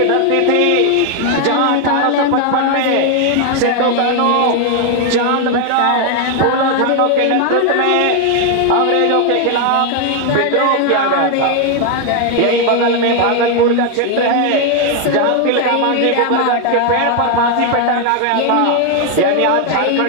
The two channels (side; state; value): both; different; correlation 0.01